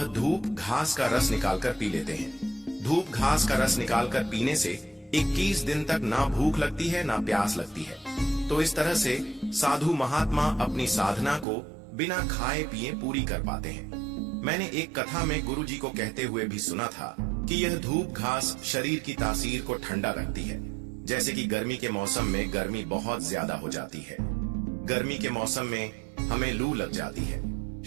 धूप घास का रस निकालकर पी लेते हैं। धूप घास का रस निकालकर पीने से 21 दिन तक ना भूख लगती है ना प्यास लगती है। तो इस तरह से साधु महात्मा अपनी साधना को बिना खाए पिए पूरी कर पाते हैं। मैंने एक कथा में गुरुजी को कहते हुए भी सुना था कि यह धूप घास शरीर की तासीर को ठंडा रखती है। जैसे कि गर्मी के मौसम में गर्मी बहुत ज्यादा हो जाती है। गर्मी के मौसम में हमें लू लग जाती है,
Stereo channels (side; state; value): left; drops out; at 11.5 s